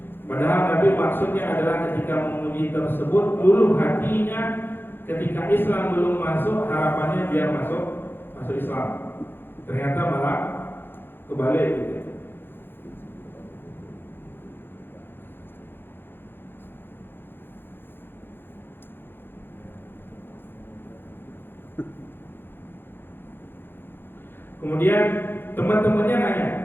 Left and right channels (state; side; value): late; right; 0.10 ms